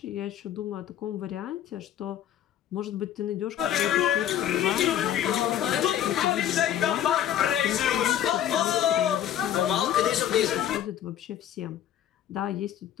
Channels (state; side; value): quieter; right; 10.8 dB